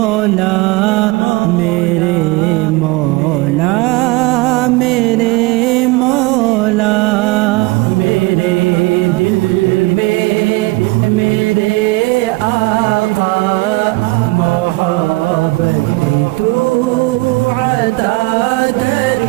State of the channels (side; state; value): left; quieter; 22.7 dB